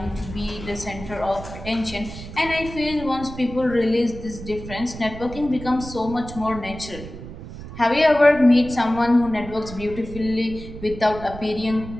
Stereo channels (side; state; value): right; noise; rumble, 12 dB below the sound